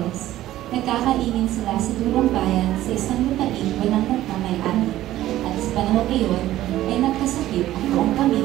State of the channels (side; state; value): left; quieter; 14.3 dB